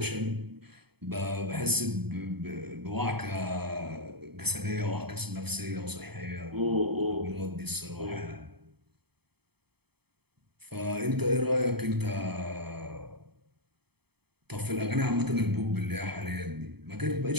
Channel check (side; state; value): left; late; 0.97 ms